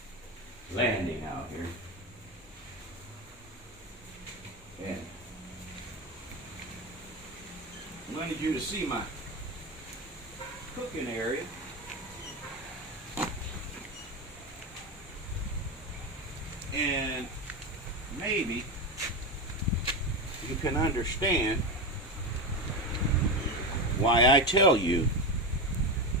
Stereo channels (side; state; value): both; normal; correlation 0.17